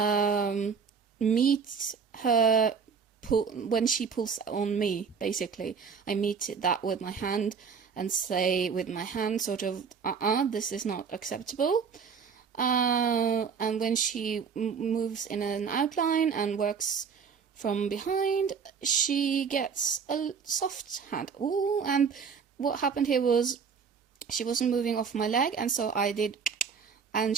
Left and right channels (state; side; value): quieter; left; 6.1 dB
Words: meet her when she pulls on me, basically. I meet that with my hand and say with my hand sort of, this is not acceptable. And when she moves in an outline and works from behind, she gets a soft hand. Ooh, and what happened here was she wasn't moving off my leg, and so I did, and